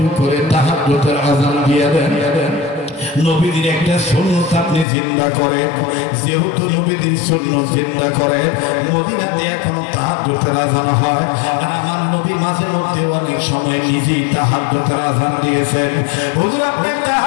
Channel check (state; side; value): drops out; right; at 4.9 s